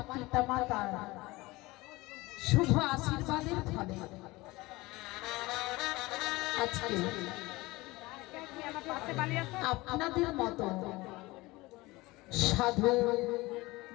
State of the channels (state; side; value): quieter; right; 21.2 dB